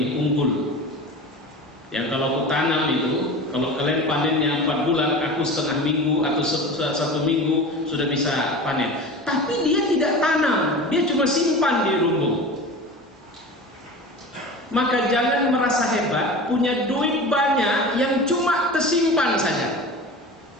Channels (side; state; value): both; normal; correlation 0.33